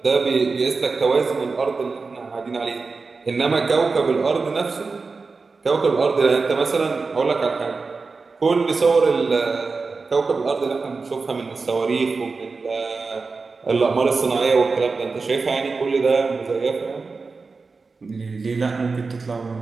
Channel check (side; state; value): left; quieter; 4.3 dB